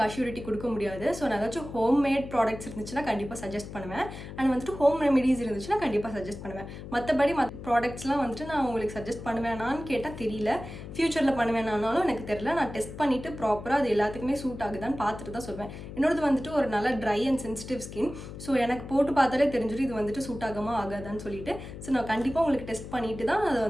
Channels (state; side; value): noise; left; hum, 11 dB below the sound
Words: அஷ்யூரிட்டி கொடுக்க முடியாது. ஸோ நான் ஏதாச்சும் ஹோம்மேட் ப்ராடக்ட்ஸ் இருந்துச்சுன்னா கண்டிப்பாக சஜஸ்ட் பண்ணுவேன். அண்ட் வந்துட்டு ஹோம் ரெமெடிஸ் இருந்துச்சுன்னா கண்டிப்பாக சஜஸ்ட் பண்ணுவேன். மற்ற ப்ராடக்ட்ஸ்லாம் வந்துட்டு நான் உங்களுக்கு சஜஸ்ட் பண்ணுவேனான்னு கேட்டால் தெரியல. ஃப்யூச்சரில் பண்ணுவேனானாலும் எனக்கு தெரியல. நான் டெஸ்ட் பண்ணிவிட்டு ப்ராப்பராக அது எல்லாத்துக்குமே சூட் ஆகுதான்னு பார்த்துட்டு தான் சொல்வேன். என்னோடது வந்துட்டு ஒரு நல்ல try and sensitive skin. So எனக்கு போட்டு பார்த்தாலே தெரிஞ்சிடும் இது வந்துட்டு சூட் ஆகாமல் ஆகாதான்னு சொல்லிட்டு. ஸோ நான் கண்டிப்பாக உங்களுக்கு டெஸ்ட் பண்ணிவிட்டு தான் அதை